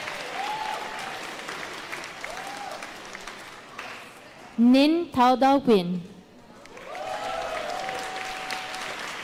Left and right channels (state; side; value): identical; both; correlation 1.00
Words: Nin Taudao Win.